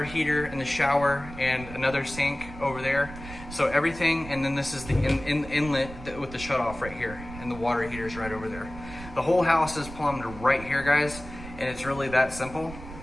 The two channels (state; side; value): noise; right; rumble, 14 dB below the sound